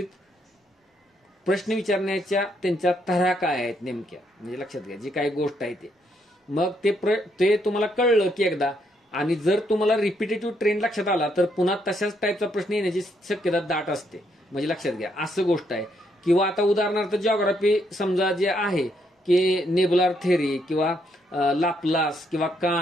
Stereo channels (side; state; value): both; normal; correlation 0.74